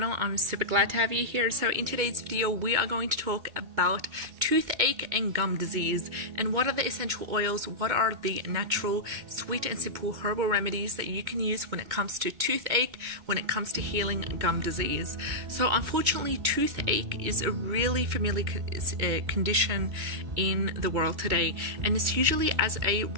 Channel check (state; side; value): late; left; 2.2 ms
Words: I'm super glad to have you here. So in today's video we are going to talk about toothache and gum disease and what are the essential oils, what are the natural sweet and simple herbal remedies that you can use when it comes to toothache, when it comes to healing gum disease. So unfortunately toothache is a really familiar condition in the world today, and it's usually as a